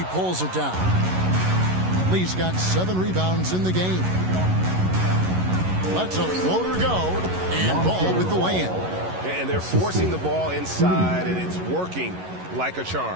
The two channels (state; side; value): late; left; 11 ms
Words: pulls it down. Lee's got 7 rebounds in the game. Lets a floater go. And Ball with the lay-in. And they're forcing the ball inside, and it's working like a